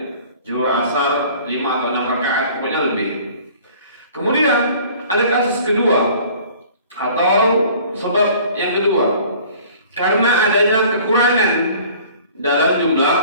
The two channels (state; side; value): inverted; both; correlation -0.50